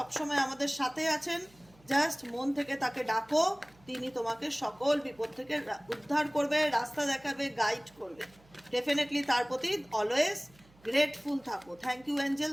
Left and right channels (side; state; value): right; noise; hum, 28 dB below the sound